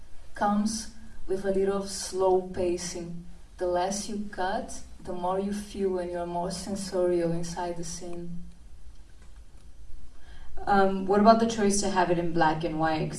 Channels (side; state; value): both; identical; correlation 1.00